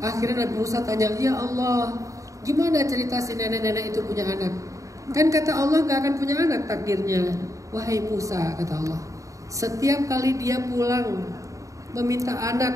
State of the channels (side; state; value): left; late; 0.16 ms